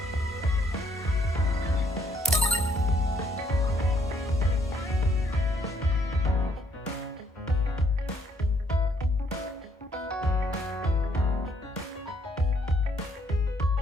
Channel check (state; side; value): normal; both; correlation 0.69